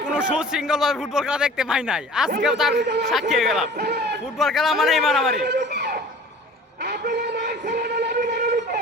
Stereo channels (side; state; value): both; normal; correlation 0.44